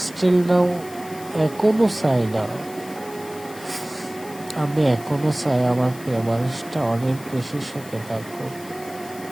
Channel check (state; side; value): noise; left; hiss, 19 dB below the sound